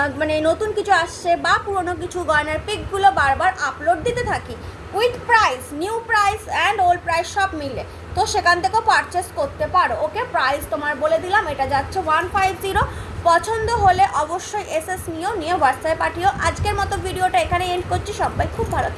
মানে নতুন কিছু আসছে বা পুরনো কিছু গয়নার পিকগুলো বারবার আপলোড দিতে থাকি, with price, new price and old price সব মিলে, তো সেখান থেকেও পারচেস করতে পারো। ওকে, প্রাইস তোমার বলে দিলাম, এটা যাচ্ছে 150। পছন্দ হলে অবশ্যই এসএস নিয়ে হোয়াটসঅ্যাপে পাঠিও। আজকের মতো ভিডিওটা এখানে এন্ড করছি। সবাই খুব ভালো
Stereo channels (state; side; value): identical; both; correlation 1.00